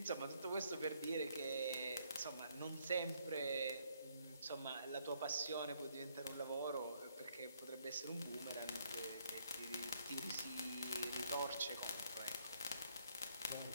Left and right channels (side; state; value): both; inverted; correlation -0.70